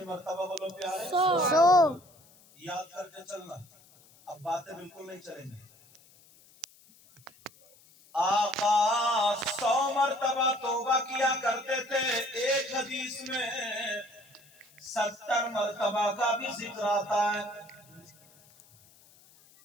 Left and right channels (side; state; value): left; noise; hiss, 27 dB below the sound